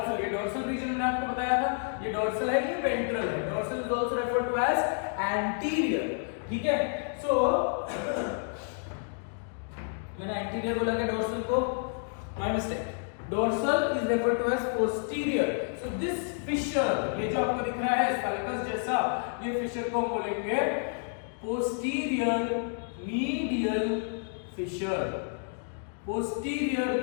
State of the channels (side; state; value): right; silent; 57 dB below the other